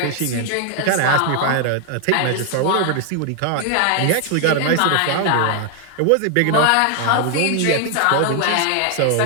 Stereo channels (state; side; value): different; both; correlation 0.00